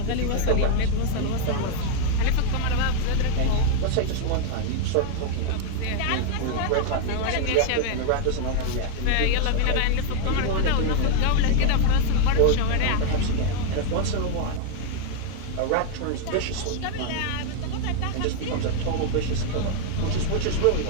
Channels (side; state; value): both; different; correlation 0.00